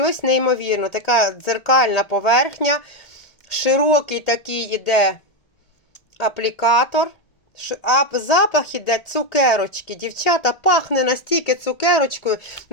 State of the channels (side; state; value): right; late; 1.8 ms